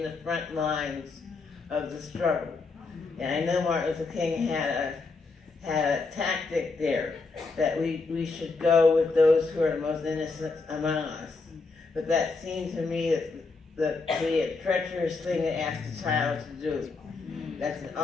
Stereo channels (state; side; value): quieter; right; 4.0 dB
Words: the front lines of the struggle. And I know Martin Luther King had a tactic there, that we should go with those who are the most innocent among us. But that seemed to me that be a treacherous thing to ask a child to do. That's an